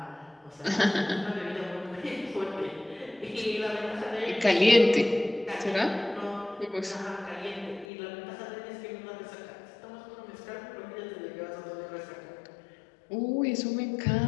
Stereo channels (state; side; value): drops out; right; at 7.9 s